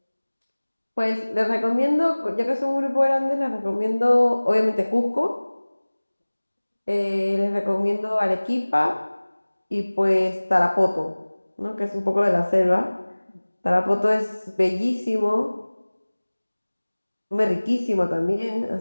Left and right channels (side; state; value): both; inverted; correlation -1.00